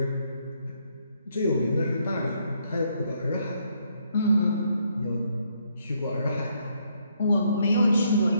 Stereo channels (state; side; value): inverted; both; correlation -0.72